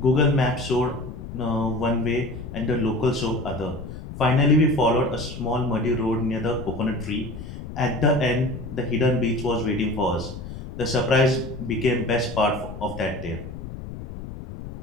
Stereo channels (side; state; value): left; noise; rumble, 10 dB below the sound